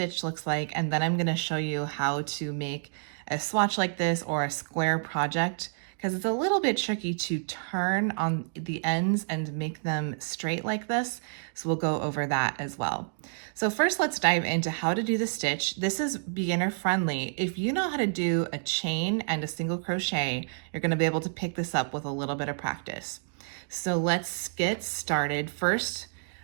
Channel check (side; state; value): left; silent; digital silence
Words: looks like, and then I'm going to show you how to make a swatch like this or a square project, because it's a little bit tricky to turn on the ends and make them straight like this. So we'll go over that as well. So first let's dive into how to do the stitch. This is beginner friendly. If you know how to do a chain and a single crochet, you're going to be able to pick this up with a little bit of practice. So let's get started. First,